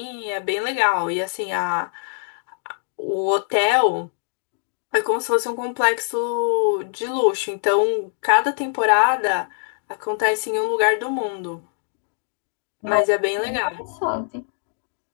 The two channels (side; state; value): right; silent; digital silence